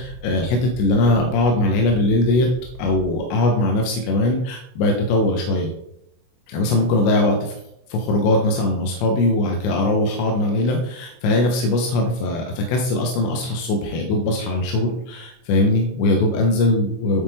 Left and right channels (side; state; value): right; late; 24 ms